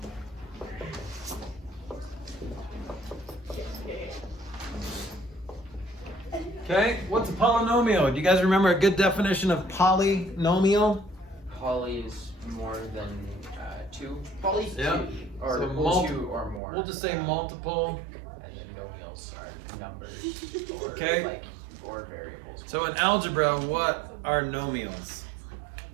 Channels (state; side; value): drops out; left; at 16.6 s